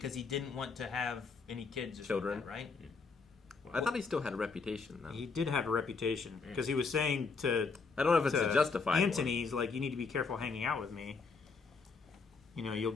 he didn't want to have any kids or Children. something, right? I thought he still had a reputation, though. He did have a reputation because he was saying to I don't know if it's to a justified Antony, he's like, you need to be careful hanging out with me. You'll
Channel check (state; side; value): quieter; right; 4.7 dB